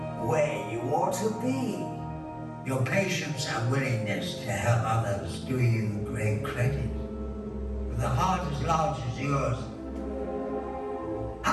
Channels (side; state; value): both; identical; correlation 1.00